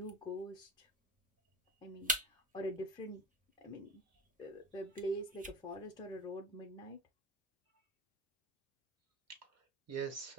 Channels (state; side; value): normal; both; correlation 0.29